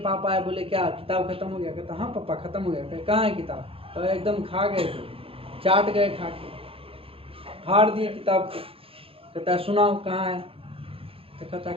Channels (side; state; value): left; late; 0.27 ms